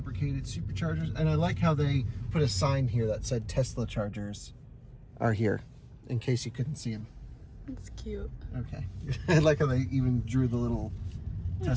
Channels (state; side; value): identical; both; correlation 1.00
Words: Superchargers. And I like how they put a sign here that said Tesla chargers are here, in case you couldn't see them. It's cute. Okay. I like how they even drew the little